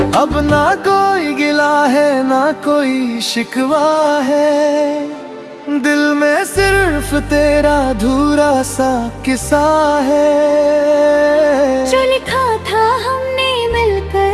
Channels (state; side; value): identical; both; correlation 1.00